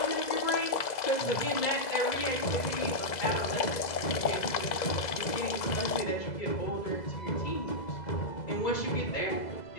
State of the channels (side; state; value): right; late; 2.0 ms